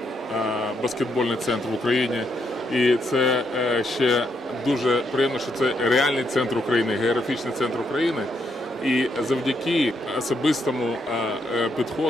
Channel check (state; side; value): normal; both; correlation 0.77